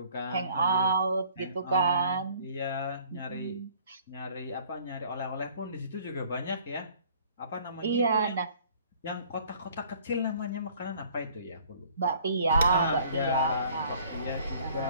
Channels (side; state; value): both; inverted; correlation -0.55